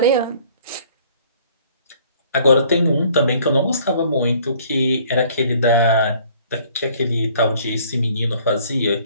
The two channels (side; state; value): both; inverted; correlation -0.57